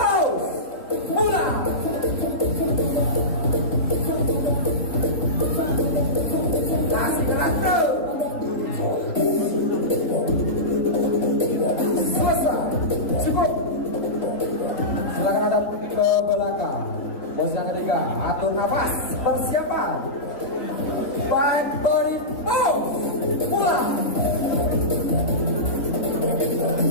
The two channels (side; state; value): right; late; 3.7 ms